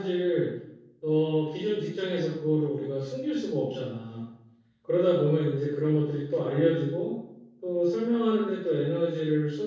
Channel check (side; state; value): both; identical; correlation 1.00